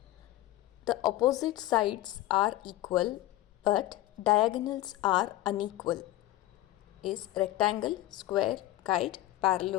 the opposite sides are equal but diagonals are unequal is rectangle, square, kite,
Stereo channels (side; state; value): right; quieter; 15.7 dB